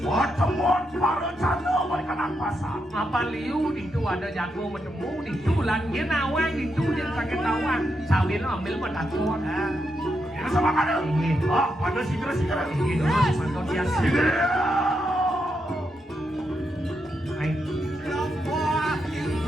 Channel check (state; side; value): normal; both; correlation 0.83